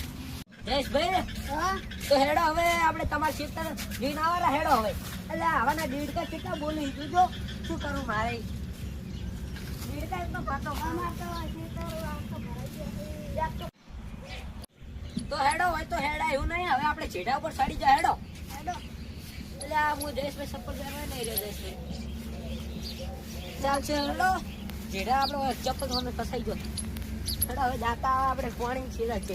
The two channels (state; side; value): identical; both; correlation 1.00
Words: જયેશભાઈ હા તો હેડો હવે આપણે તમારા ખેતર જોઈને આવરા. હેડો હવે એટલે આવાના દીડકા કેટલા બોલી જોજો શું કરું મારે. દીડકા એકદમ પાતો અમાર તો ક્ષેત્ર આવતો ભરાઈ ગયો. તો હેડો હોય તો હેડા એવું નહીં. હવે આપણે છેડા ઉપર ચડી જાય. હેડો હેડો. એટલે આ હું જયેશભાઈ ચપ્પલ પહેરવા નહીં રહ્યો. જયેશભાઈ ચાલશે હેડો. જેડા આપણો ચપ્પલ મને ફસાઈ ગયો. હેડો હવે દાતા આપણે પાણી છેડા